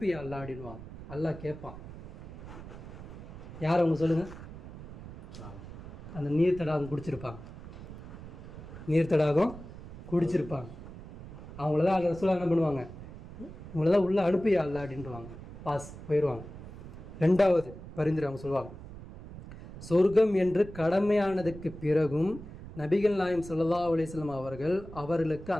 அல்லாஹ் அப்படின்வாங்க. அல்லாஹ் கேட்பான், யார் அவங்க சொல்லுங்கள், அந்த நீர் தடாகம் குடிச்சிருப்பாங்க, நீர் தடாகம் குடிச்சிருப்பாங்க, அவங்களதான் அந்த ரசூலா என்ன பண்ணுவாங்க, இவங்களதான் உள்ளே அனுப்பியா அல்லாஹ் அப்படின்ட்டுவாங்க, பாஸ் போயிடுவாங்க. 2வது பரிந்துரை அவங்க சொல்லுவாங்க, சொர்க்கம் என்று கடமையானதுக்கு பிறகும் நபிகள் நாயகம் ஸல்லல்லாஹு அலைஹி வஸல்லம் அவர்களுக்கு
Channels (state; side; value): noise; right; rumble, 14 dB below the sound